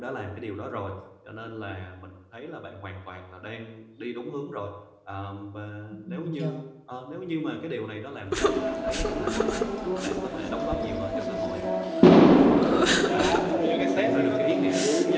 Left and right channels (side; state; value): both; identical; correlation 1.00